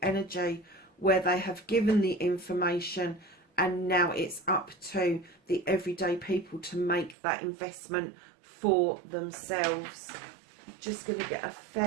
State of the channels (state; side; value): drops out; left; at 7.2 s